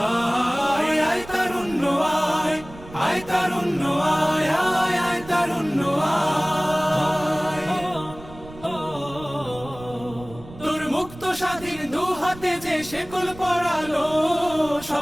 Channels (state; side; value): noise; right; rumble, 17 dB below the sound